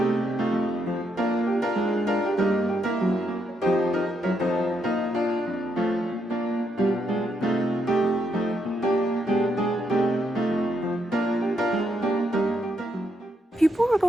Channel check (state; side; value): normal; both; correlation 0.77